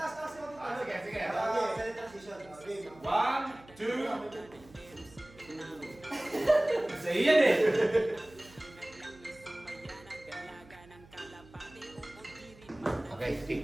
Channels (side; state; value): right; noise; hum, 23 dB below the sound